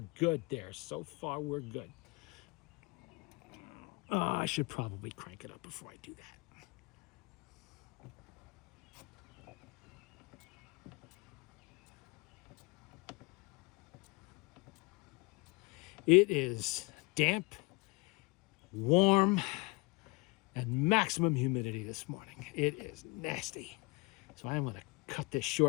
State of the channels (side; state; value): right; quieter; 27.1 dB